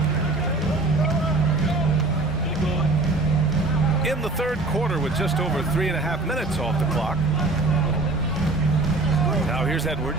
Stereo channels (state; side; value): quieter; left; 3.1 dB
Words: In the third quarter with just over 3.5 minutes off the clock. Now here's